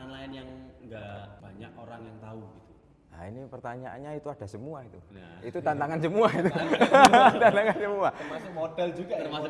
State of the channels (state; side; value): identical; both; correlation 1.00